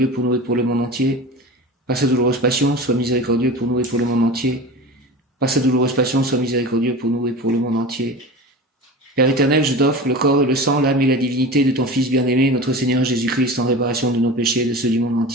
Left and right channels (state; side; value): normal; both; correlation 0.32